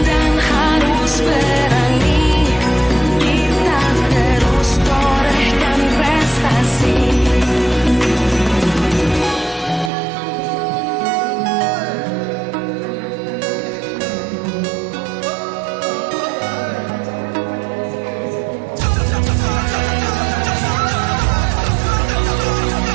dan harus berani, kita terus torehkan prestasi.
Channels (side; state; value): left; drops out; at 9.9 s